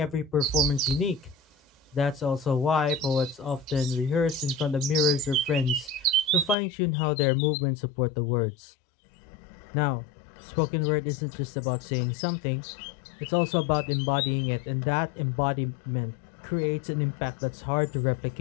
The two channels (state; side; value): drops out; right; at 6.6 s